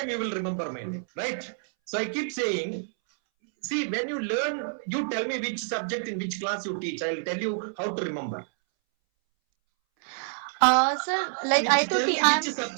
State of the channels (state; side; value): silent; left; 60 dB below the other